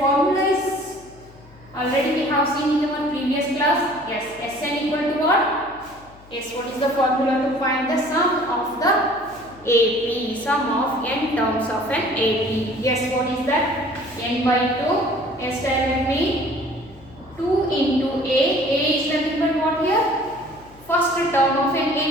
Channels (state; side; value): noise; left; hum, 24 dB below the sound